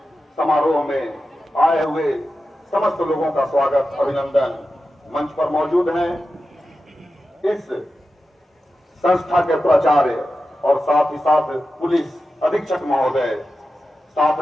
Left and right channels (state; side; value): normal; both; correlation 0.92